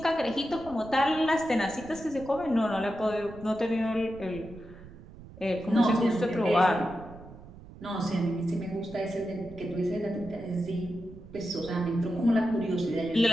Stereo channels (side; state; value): right; noise; rumble, 17 dB below the sound